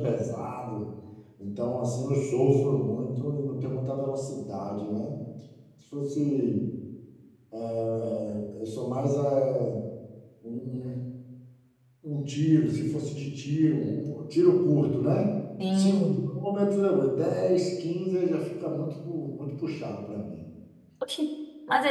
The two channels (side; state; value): both; identical; correlation 1.00